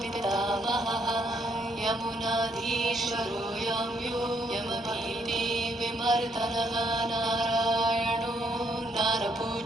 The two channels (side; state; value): both; normal; correlation 0.72